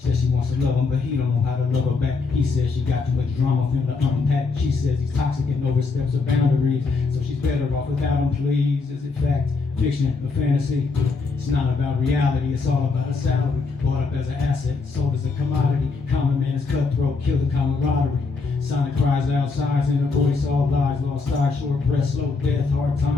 she wants to love him, but he don't know how to love her back. He says she got too much drama for him to unpack. She says he's toxic and oversteps her boundaries. So she's better off without him, please. Is it fact, fiction, or fantasy? It's not about reality, it's all about a salary. Bought up as an asset, sold as a commodity. Common man is cutthroat, kill the camaraderie. Sonic cries outside, in a voice all lies. Lost eyes, short breath, slow death, hard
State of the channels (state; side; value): quieter; right; 4.3 dB